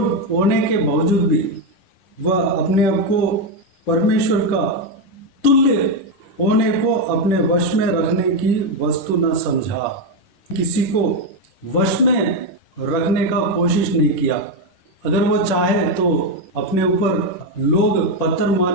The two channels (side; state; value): right; late; 10 ms